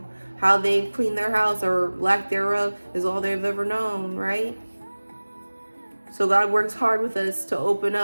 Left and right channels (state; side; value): inverted; both; correlation -1.00